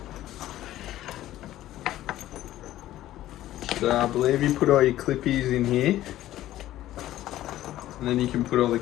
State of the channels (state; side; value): quieter; right; 14.1 dB